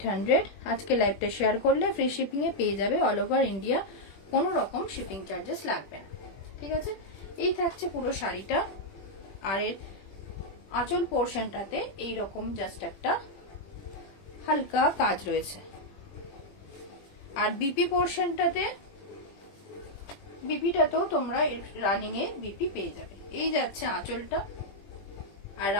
আজকে লাইভটা শেয়ার করলে ফ্রি শিপিং এ পেয়ে যাবে অল ওভার ইন্ডিয়া, কোনো রকম শিপিং চার্জেস লাগবে না। ঠিক আছে, এই থাকছে পুরো শাড়িটা। আর এর আঁচল পোর্শনটাতে এইরকম জাস্ট একটা হালকা কাজ রয়েছে। আর বিপি পোর্শনটাতে, বিপিটাতেও তোমরা রানিং এ বিপি পেয়ে যাবে। এই যাচ্ছে আঁচলটা, আর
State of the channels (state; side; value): late; right; 21 ms